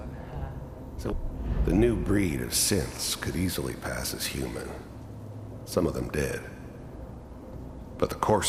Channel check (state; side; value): identical; both; correlation 1.00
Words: So, the new breed of synths could easily pass as human. Some of them did. But the